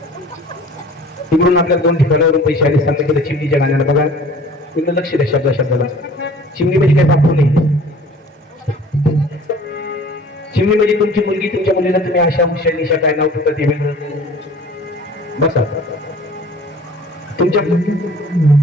तिकडून आपल्या 2 ठिकाणावरून पैसे आले सांगता केलं चिमणीच्या गाण्याला बघा तिकडे लक्ष द्या शब्दाला चिमणी म्हणजे काही बापू नाही चिमणी म्हणजे तुमची मुलगी तुमच्या मुलीला तुम्ही अशा हुशार निशा काय नाव ठेवता ते वेगळं बसा तुमच्या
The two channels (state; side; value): normal; both; correlation 0.47